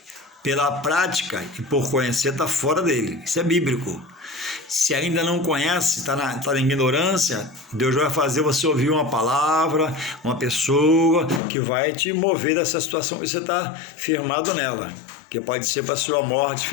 pela prática e por conhecer, está fora dele. Isso é bíblico. Se ainda não conhece, está na ignorância, Deus vai fazer você ouvir uma palavra, uma pessoa que vai te mover dessa situação que você está firmado nela, que pode ser para a sua morte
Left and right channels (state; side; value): drops out; right; at 11.4 s